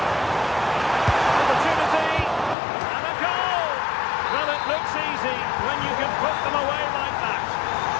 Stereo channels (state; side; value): drops out; right; at 2.6 s